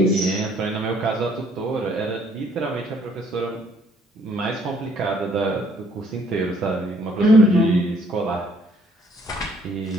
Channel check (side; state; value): both; normal; correlation 0.63